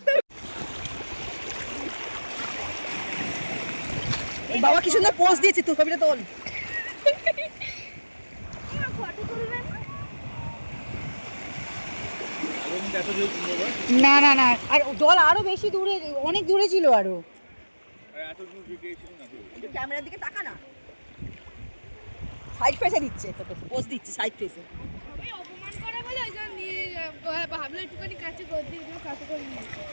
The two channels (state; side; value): inverted; both; correlation -1.00